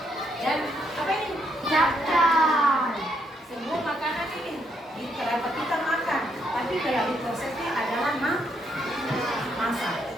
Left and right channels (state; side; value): normal; both; correlation 0.75